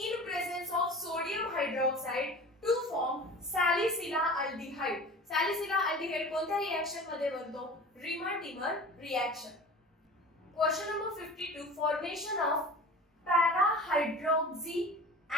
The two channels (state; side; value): normal; both; correlation 0.39